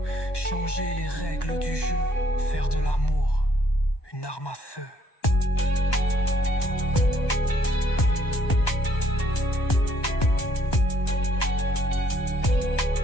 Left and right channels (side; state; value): right; late; 1.2 ms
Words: Changer les règles du jeu, faire de l'amour une arme à feu.